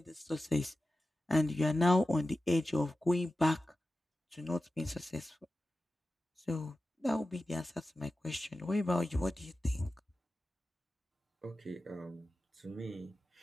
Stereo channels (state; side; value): normal; both; correlation 0.94